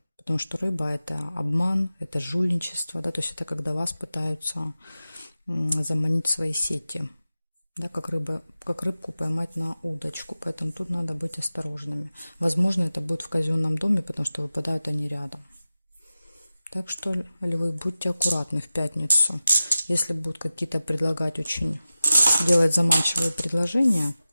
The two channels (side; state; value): both; inverted; correlation -0.94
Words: потому что рыба – это обман, это жульничество, да, то есть это когда вас пытаются заманить в свои сети. Да, как рыбку поймать на удочку. Поэтому тут надо быть осторожными. Возможно, это будет в казенном доме, потому что выпадают они рядом. Так что, львы, будьте аккуратны в пятницу. Если будут какие-то предлагать делать заманчивые предложения,